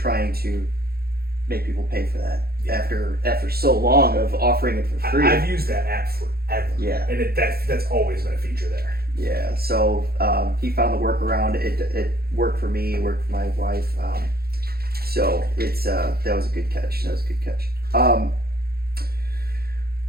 to make people pay for that after so long of offering it for free. I've used that app forever. Yeah, and that's always been a feature there. Yeah, so he found the workaround. It worked for me. It worked for my wife. So it's that was a good catch.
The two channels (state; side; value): late; left; 0.45 ms